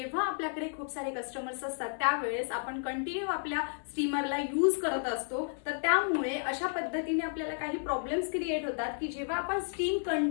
आपल्याकडे खूप सारे कस्टमर्स असतात त्यावेळेस आपण कंटिन्यू आपल्या स्टीमरला यूज करत असतो, तर त्यामुळे अशा पद्धतीने आपल्याला काही प्रॉब्लेम्स क्रिएट होतात की जेव्हा आपण स्टीम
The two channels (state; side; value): silent; right; 56 dB below the other